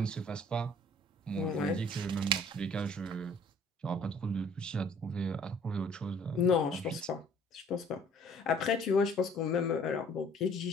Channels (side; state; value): both; normal; correlation 0.55